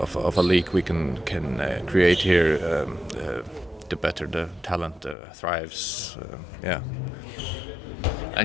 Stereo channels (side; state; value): right; drops out; at 5.2 s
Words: a league we can create here, the better the talent thrives.